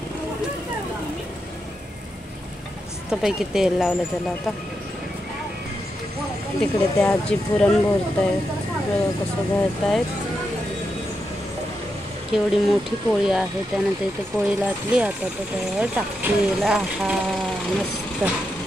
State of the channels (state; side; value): normal; both; correlation 0.85